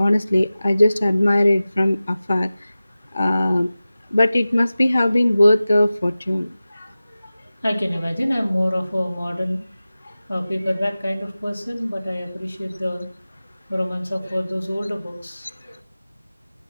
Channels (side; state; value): both; inverted; correlation -0.96